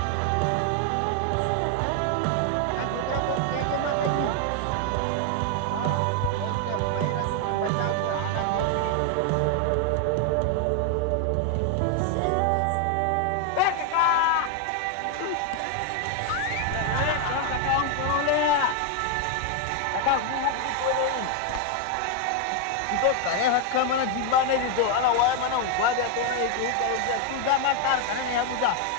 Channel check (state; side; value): different; both; correlation 0.01